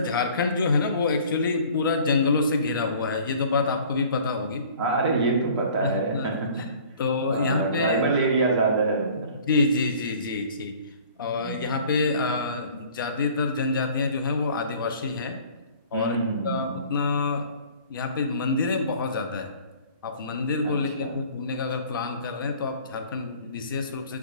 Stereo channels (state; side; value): inverted; both; correlation -0.50